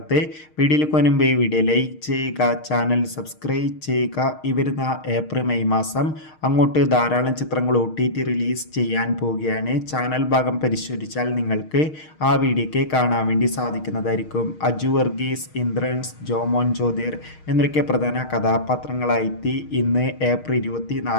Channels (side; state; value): right; late; 6.4 ms